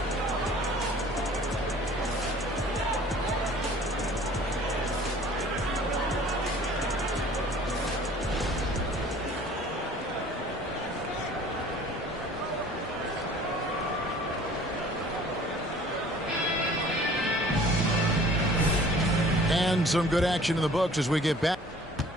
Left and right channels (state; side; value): normal; both; correlation 0.50